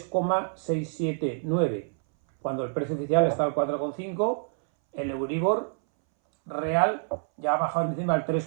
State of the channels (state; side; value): silent; left; 60 dB below the other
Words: cuando el precio oficial está al 4,5, el Euribor real ya ha bajado en diciembre al